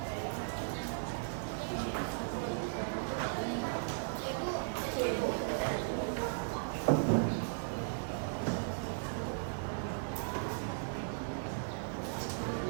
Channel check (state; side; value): silent; left; digital silence